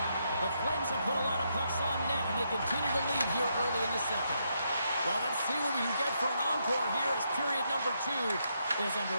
The Flames have put a lot of pucks on net, and they continue to lead here early in the second. Well, let's see what we can get for an encore here as period number 2 is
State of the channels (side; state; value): both; inverted; correlation -0.79